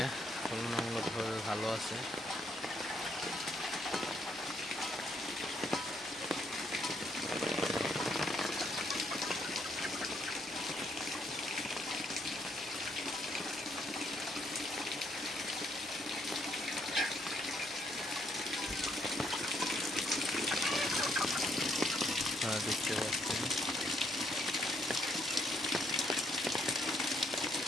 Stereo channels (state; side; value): normal; both; correlation 0.71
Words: তুলনামূলকভাবে ভালো আছে। দেখতে পাচ্ছেন